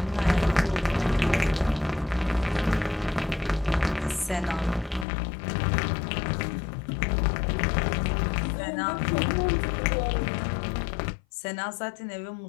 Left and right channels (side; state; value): right; drops out; at 5.1 s